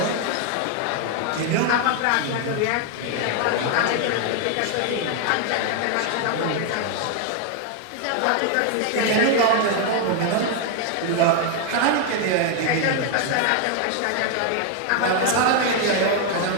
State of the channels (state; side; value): different; both; correlation 0.00